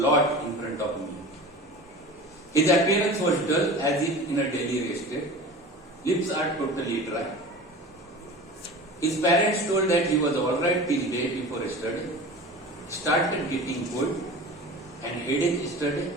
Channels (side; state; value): both; normal; correlation 0.36